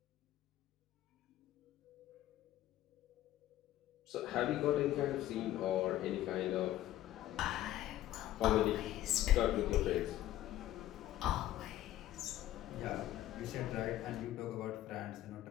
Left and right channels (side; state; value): right; quieter; 13.7 dB